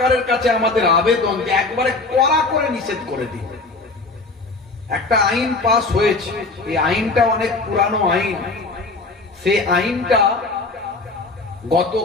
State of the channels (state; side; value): quieter; right; 3.5 dB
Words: কাছে আমাদের আবেদন যে একবারে কড়া করে নিষেধ করে দিই। একটা আইন পাস হয়েছে, এই আইনটা অনেক পুরানো আইন। সেই আইনটা